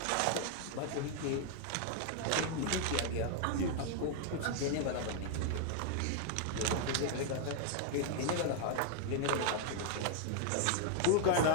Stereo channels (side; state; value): both; different; correlation 0.00